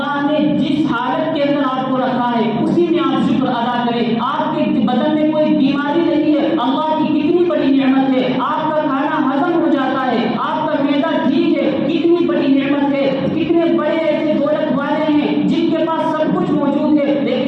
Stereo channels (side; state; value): both; identical; correlation 1.00